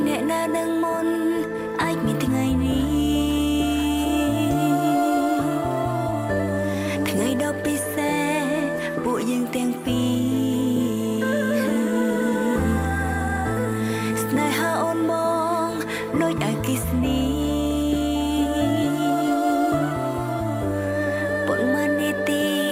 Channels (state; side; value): identical; both; correlation 1.00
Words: អ្នកណានឹងមុនអាចមានថ្ងៃនេះថ្ងៃដ៏ពិសេសពួកយើងទាំងពីរស្នេហាអូនមកដូចអគ្គិសនីប៉ុន្មាននាទី